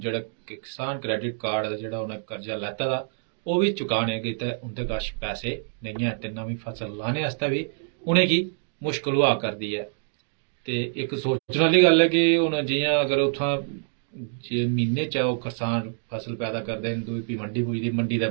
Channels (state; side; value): silent; left; digital silence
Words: किसान क्रेडिट कार्ड दा जेह्ड़ा उ'नें कर्जा लैता दा ओह् बी चुकाने गितै उं'दे कश पैसे नेईं है, ते नमीं फसल लाने आस्तै बी उ'नेंगी मुश्कल होआ करदी है। ते इक सोचने आह्ली गल्ल है कि हुण जि'यां अगर उत्थां जे म्हीने च ओह् करसान फसल पैदा करदे न, दूई फ्ही मंडी पुजदी, मंडी दे